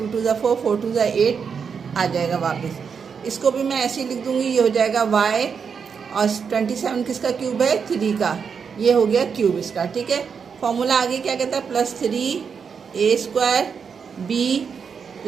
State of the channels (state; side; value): quieter; left; 6.3 dB